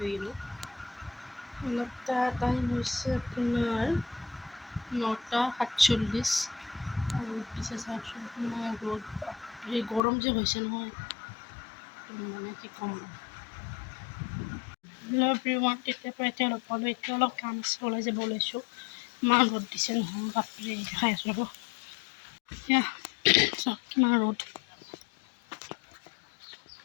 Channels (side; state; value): right; drops out; at 10.0 s